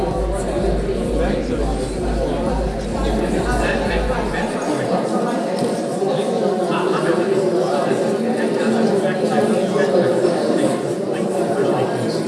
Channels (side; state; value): both; identical; correlation 1.00